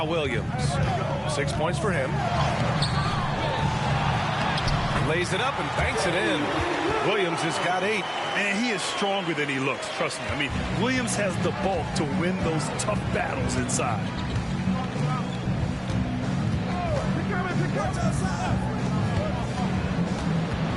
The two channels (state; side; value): identical; both; correlation 1.00